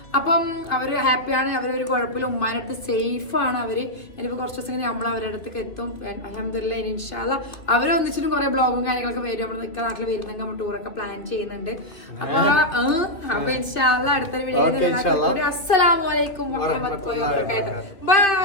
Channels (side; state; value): right; late; 2.9 ms